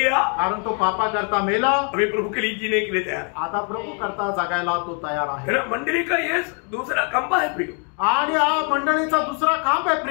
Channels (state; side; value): quieter; right; 39.6 dB